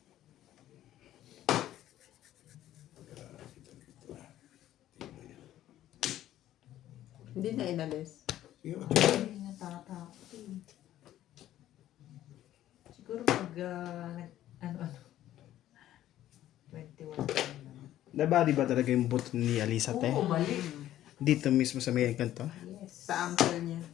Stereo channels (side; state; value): right; quieter; 13.0 dB